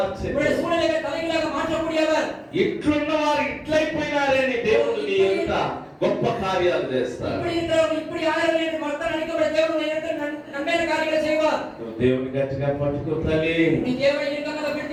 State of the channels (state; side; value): identical; both; correlation 1.00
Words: உன்னுடைய சூழ்நிலைகளை தலைகீழாக மாற்றக்கூடியவர். ఇట్లున్న వారు ఇట్లయిపోయినారే నీ దేవుడు నీ ఎంత గొప్ప కార్యాలు చేస్తాడు. இப்படி இருக்கிறவங்க இப்படி ஆயிரம் என்று மக்கள் நினைக்கிற தேவன் உனக்கு நன்மையான காரியங்களை செய்வார். నువ్వు దేవుని గట్టిగా పట్టుకో తల్లి. నీ దేవుని ఇరుకంగా